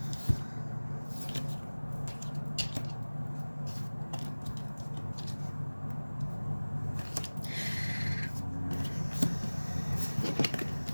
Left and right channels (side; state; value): both; inverted; correlation -1.00